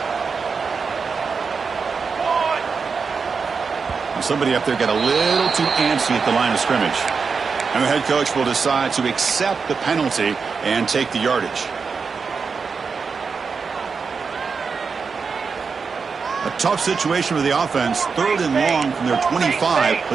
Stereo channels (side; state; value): left; quieter; 5.3 dB